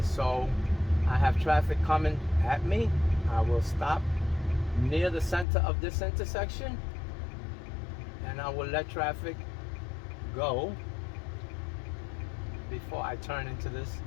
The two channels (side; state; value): right; drops out; at 5.5 s